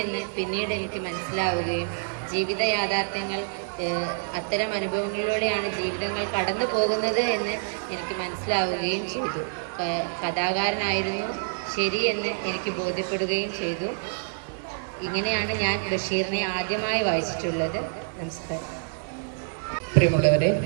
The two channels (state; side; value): silent; left; digital silence